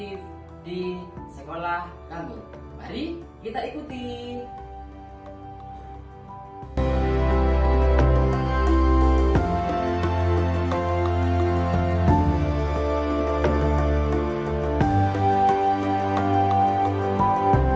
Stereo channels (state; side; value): identical; both; correlation 1.00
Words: di sekolah kami. Mari kita ikuti.